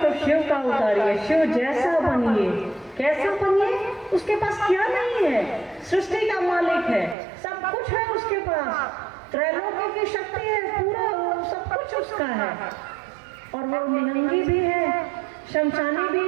शिव का उतारिए, शिव जैसा बनिए। कैसा बनिए? उसके पास क्या नहीं है? सृष्टि का मालिक है, सब कुछ है उसके पास, त्रैलोक्य की शक्ति है, पूरा सब कुछ उसका है। और वो निहंगी भी है, शमशानी भी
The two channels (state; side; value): drops out; left; at 7.2 s